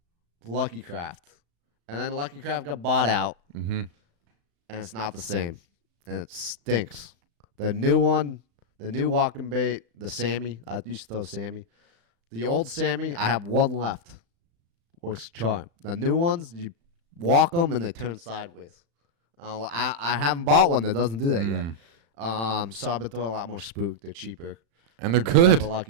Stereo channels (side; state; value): left; late; 35 ms